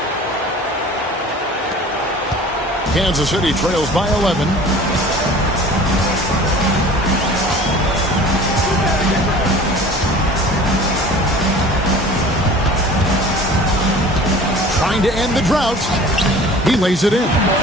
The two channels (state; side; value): normal; both; correlation 0.44